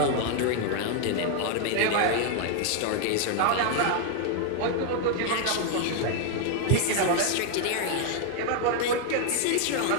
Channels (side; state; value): both; different; correlation 0.00